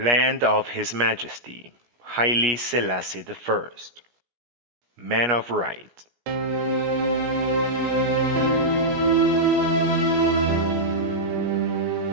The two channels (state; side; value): late; left; 17 ms